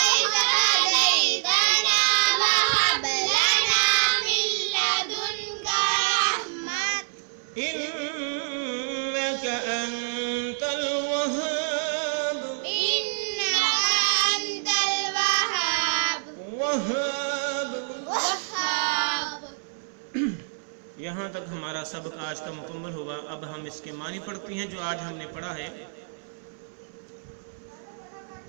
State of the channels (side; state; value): left; silent; 61 dB below the other